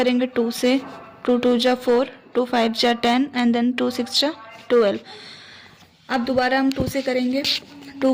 2 से, 2 2 जा 4, 2 5 जा 10 एंड देन 2 6 जा 12। अब दोबारा हम 2 से करेंगे, 2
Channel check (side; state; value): both; identical; correlation 1.00